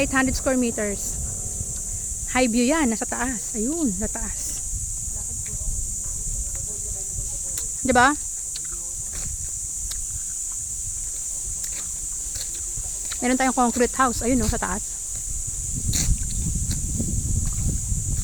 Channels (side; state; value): both; identical; correlation 1.00